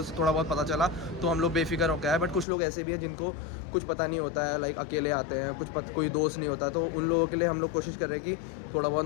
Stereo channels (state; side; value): drops out; right; at 2.5 s